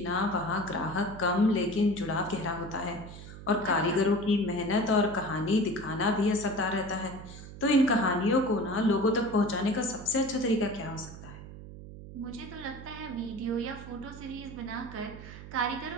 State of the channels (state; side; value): noise; right; hum, 14 dB below the sound